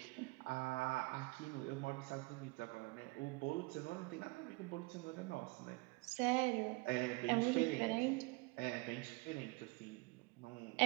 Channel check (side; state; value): left; quieter; 25.9 dB